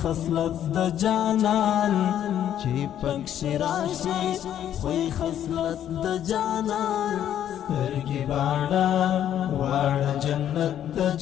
خصلت د جانان چې پکښې راشي خوی خصلت د جانان سترګې باڼه واړه جنت د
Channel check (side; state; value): right; quieter; 10.6 dB